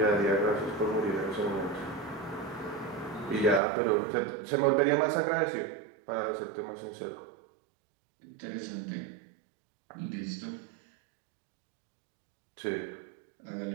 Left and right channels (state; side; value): drops out; left; at 3.6 s